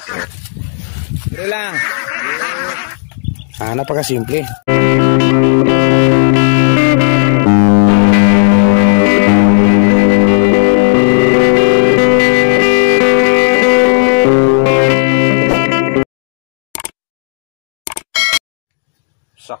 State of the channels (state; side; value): silent; right; digital silence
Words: Dali lang. Napakasimple.